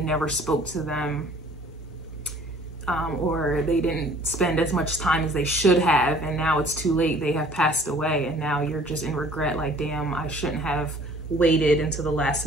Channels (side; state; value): both; normal; correlation 0.53